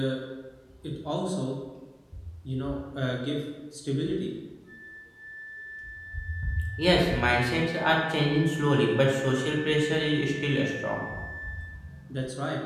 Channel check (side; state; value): both; identical; correlation 1.00